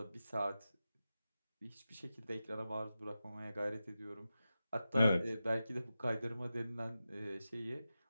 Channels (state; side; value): inverted; both; correlation -0.92